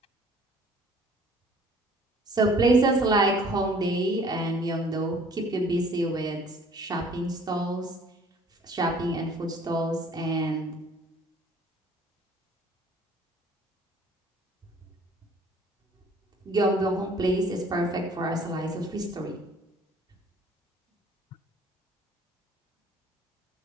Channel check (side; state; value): both; normal; correlation 0.54